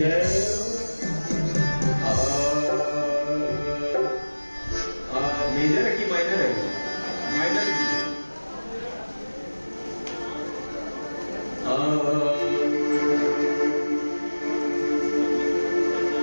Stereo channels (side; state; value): both; inverted; correlation -1.00